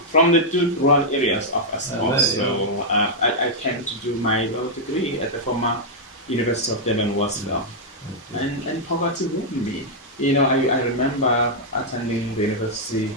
from the two rural areas of Estcourt. So I came to do my law degree at the former University of Durban, and poverty ruined me. I remember attending the university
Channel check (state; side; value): normal; both; correlation -0.05